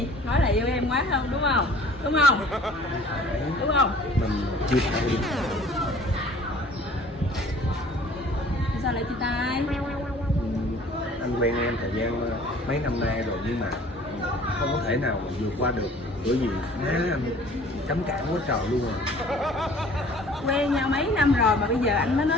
Nói là yêu em quá không, đúng không? Đúng không? phải Đúng không? mình chia tay đi. Sao lại chia tay? Anh quen em thời gian mấy năm nay rồi nhưng mà không có thể nào mà vượt qua được, bởi vì má anh cấm cản quá trời luôn rồi. Quen nhau mấy năm rồi mà bây giờ anh mới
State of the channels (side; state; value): both; normal; correlation 0.51